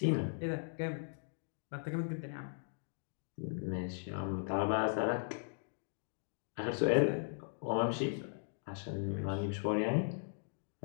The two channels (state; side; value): silent; right; digital silence